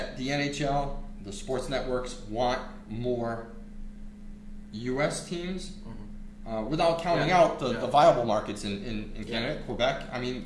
the NHL, the sports networks, want more U.S. teams? Without counting out the viable markets in Canada, Quebec. I mean,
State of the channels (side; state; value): both; identical; correlation 1.00